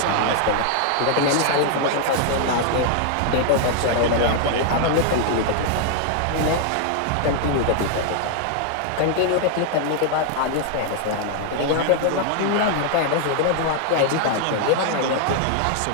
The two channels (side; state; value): both; different; correlation 0.00